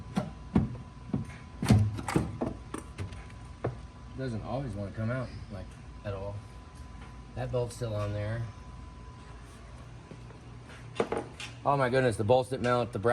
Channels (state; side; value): identical; both; correlation 1.00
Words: Doesn't always want to come out like at all. That bolt's still on there. Oh my goodness, the bolts that mount the